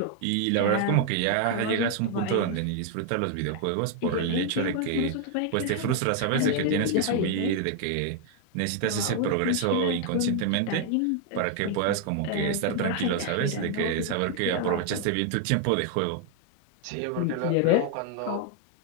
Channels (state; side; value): different; both; correlation 0.00